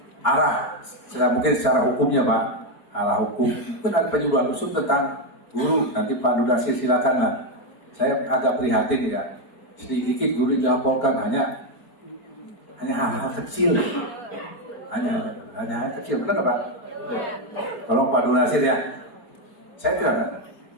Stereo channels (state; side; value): late; right; 4.3 ms